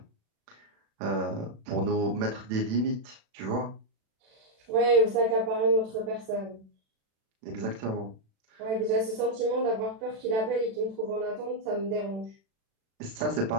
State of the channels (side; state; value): left; late; 36 ms